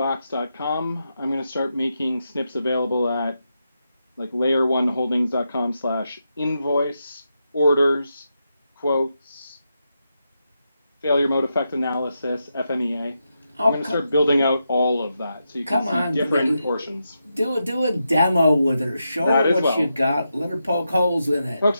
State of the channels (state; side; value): inverted; both; correlation -0.86